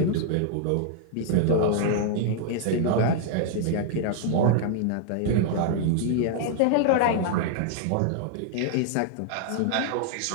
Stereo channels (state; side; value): different; both; correlation -0.01